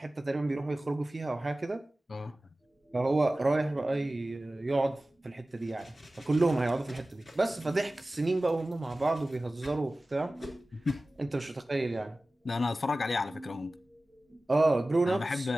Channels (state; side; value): normal; both; correlation 0.97